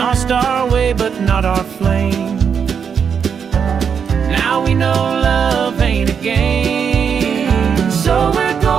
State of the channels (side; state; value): left; quieter; 7.0 dB